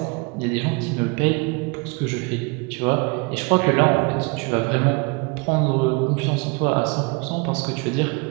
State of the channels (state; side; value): quieter; left; 29.5 dB